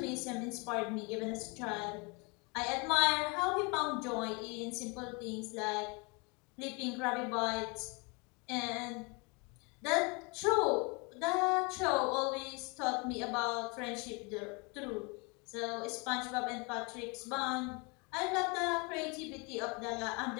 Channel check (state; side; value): quieter; right; 29.7 dB